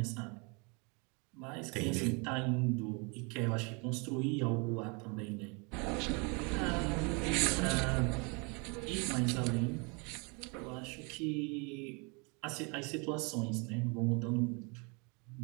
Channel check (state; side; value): quieter; left; 32.0 dB